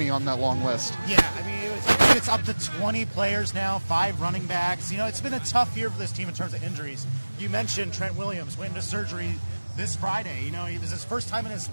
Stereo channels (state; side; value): inverted; both; correlation -1.00